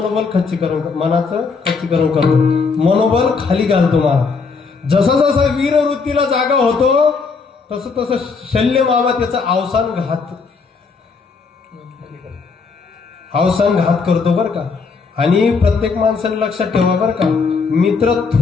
मनाचं खच्चीकरण करतो, मनोबल खाली घालतो महाराज. जसा जसा वीर वृत्तीला जागा होतो तसं तसं शल्य मामा त्याचा अवसान घात करतो बरं का. आणि प्रत्येक माणसाने लक्षात ठेवा बरं का, मित्र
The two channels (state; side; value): quieter; right; 4.9 dB